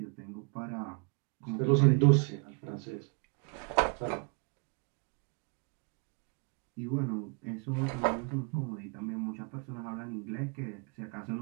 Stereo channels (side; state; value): left; quieter; 35.6 dB